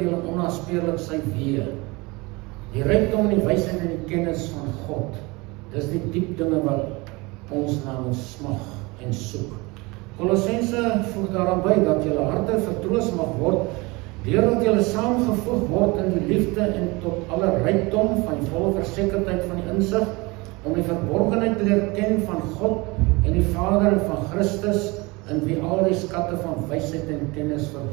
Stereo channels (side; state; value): left; quieter; 24.8 dB